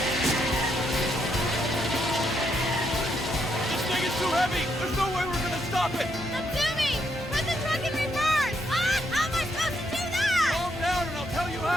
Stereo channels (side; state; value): both; normal; correlation 0.76